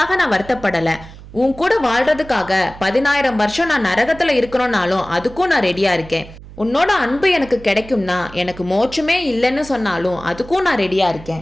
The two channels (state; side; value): noise; right; hum, 17 dB below the sound